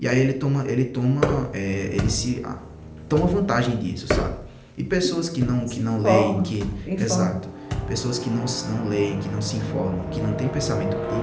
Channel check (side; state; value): both; identical; correlation 1.00